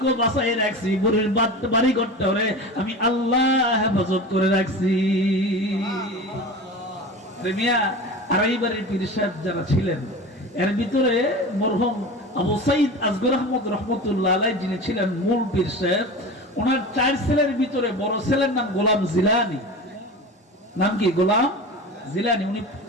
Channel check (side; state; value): both; normal; correlation 0.31